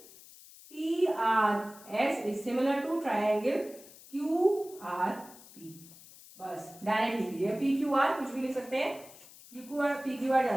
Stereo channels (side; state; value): left; noise; hiss, 20 dB below the sound